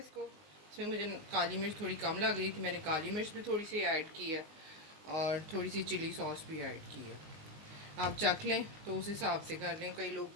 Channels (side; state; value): left; late; 19 ms